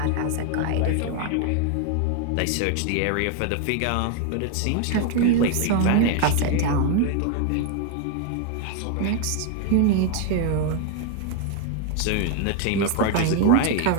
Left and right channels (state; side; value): different; both; correlation 0.00